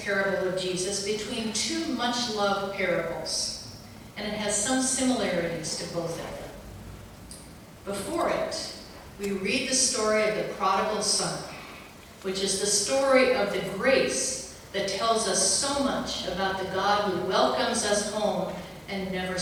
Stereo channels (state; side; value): identical; both; correlation 1.00